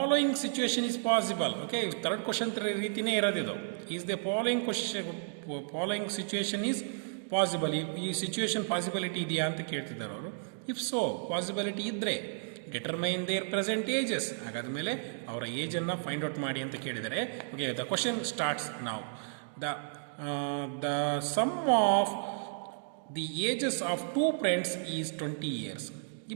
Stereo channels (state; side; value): silent; left; digital silence